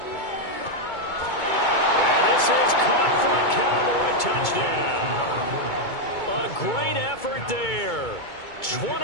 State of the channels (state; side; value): late; right; 2.2 ms